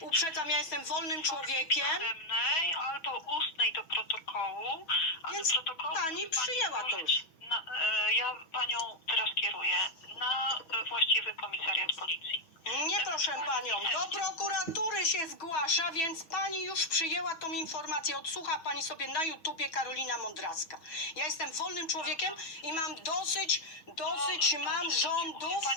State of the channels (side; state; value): right; late; 6.1 ms